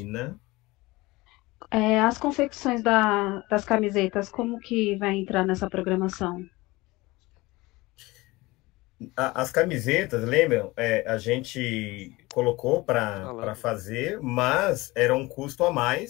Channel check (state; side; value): quieter; right; 21.3 dB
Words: As confecções das camisetas, como que vai entrar nessa programação? As camisetas, lembram? A gente colocou para Falando. fazer, mas era um custo a